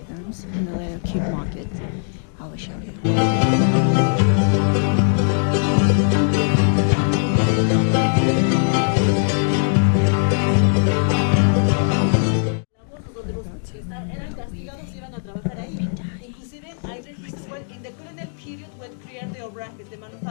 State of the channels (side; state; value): right; silent; 65 dB below the other